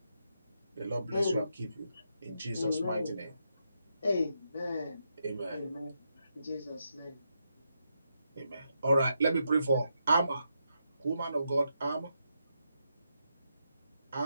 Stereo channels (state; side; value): inverted; both; correlation -0.82